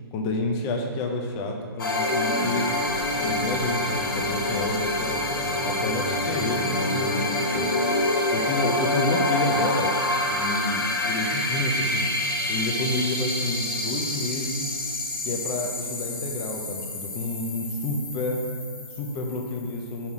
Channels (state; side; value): normal; both; correlation -0.15